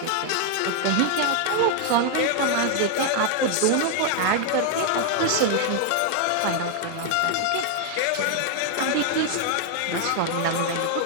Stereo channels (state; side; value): different; both; correlation 0.00